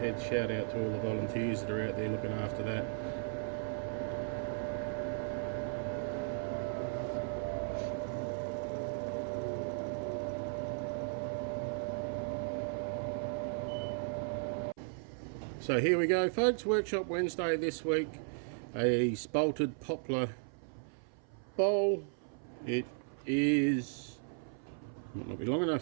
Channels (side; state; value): left; silent; 54 dB below the other